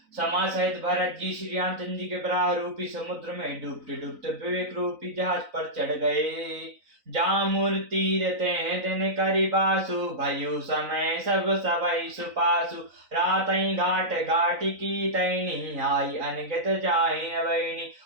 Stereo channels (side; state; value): left; late; 3.9 ms